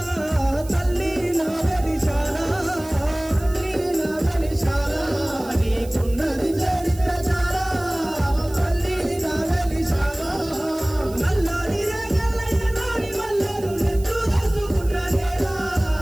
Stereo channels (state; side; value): noise; right; hiss, 19 dB below the sound